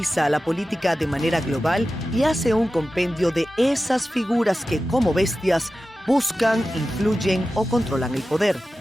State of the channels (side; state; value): both; normal; correlation 0.94